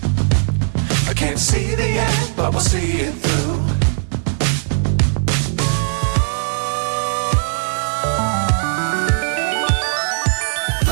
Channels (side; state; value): left; silent; digital silence